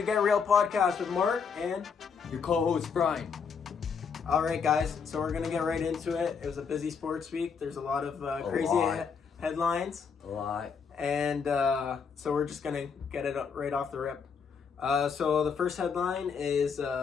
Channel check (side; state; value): right; quieter; 6.1 dB